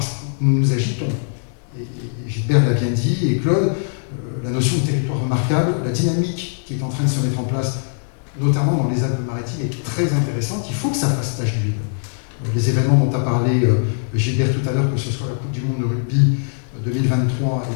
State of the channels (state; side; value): silent; right; digital silence